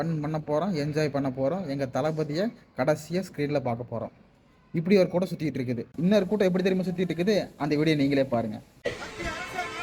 பண்ண போகிறோம், என்ஜாய் பண்ண போகிறோம், எங்கள் தளபதியை கடைசியாக ஸ்க்ரீனில் பார்க்க போகிறோம். இப்படி ஒரு கூட்டம் சுற்றிட்டு இருக்குது. இன்னொரு கூட்டம் எப்படி தெரியுமா சுற்றிட்டு இருக்குது? அந்த வீடியோ நீங்களே பாருங்கள்.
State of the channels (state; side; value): identical; both; correlation 1.00